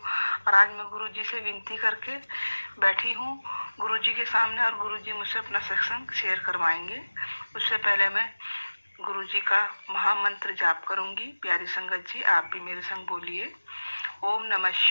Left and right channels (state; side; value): inverted; both; correlation -1.00